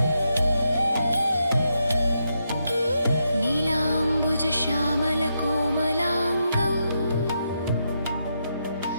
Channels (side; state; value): both; inverted; correlation -0.83